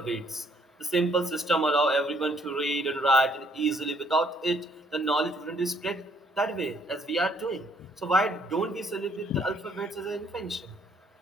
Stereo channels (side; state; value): both; normal; correlation 0.66